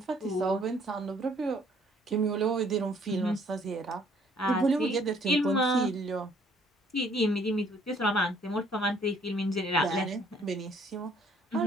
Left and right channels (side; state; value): both; normal; correlation 0.62